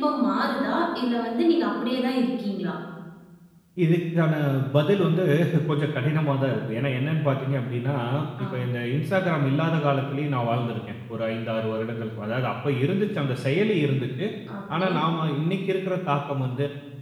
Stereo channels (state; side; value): identical; both; correlation 1.00